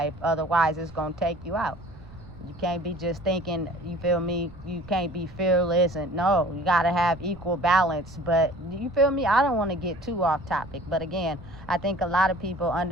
Otherwise, it's going to take you out. You can't be just thinking, you feel me, you can't be fearless. And no, you got to have equal balance. But you feel me? I don't want to get too off topic. But again, I think a lot of people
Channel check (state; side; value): noise; right; rumble, 20 dB below the sound